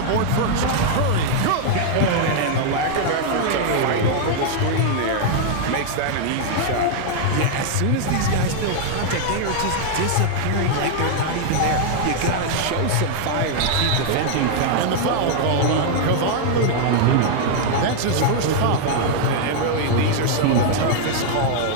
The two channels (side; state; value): both; different; correlation 0.00